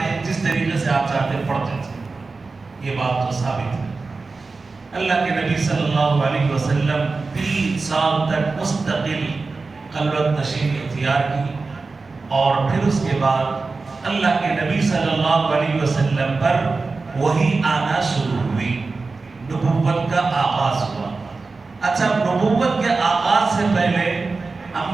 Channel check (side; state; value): left; quieter; 4.0 dB